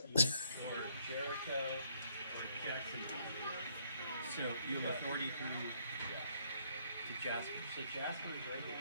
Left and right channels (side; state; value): both; inverted; correlation -0.68